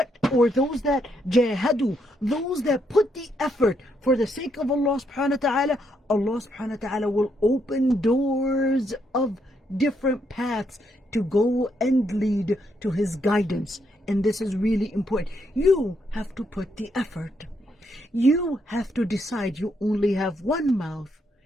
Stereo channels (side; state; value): both; normal; correlation 0.76